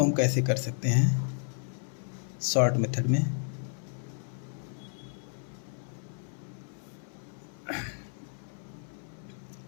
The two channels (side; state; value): right; silent; 56 dB below the other